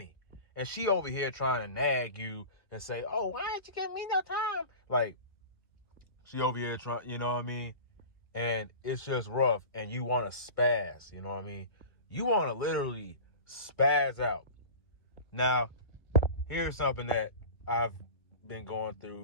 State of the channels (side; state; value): right; late; 1.3 ms